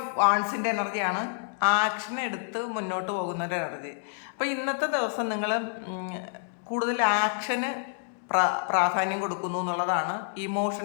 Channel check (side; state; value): right; silent; digital silence